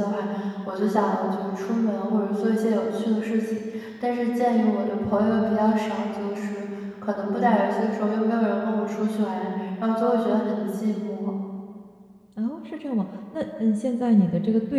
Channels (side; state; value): both; identical; correlation 1.00